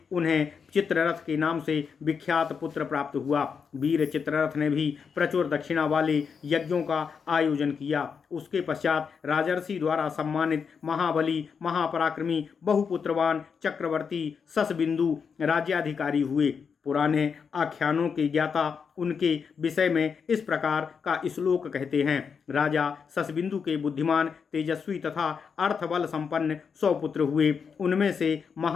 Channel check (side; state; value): right; quieter; 6.2 dB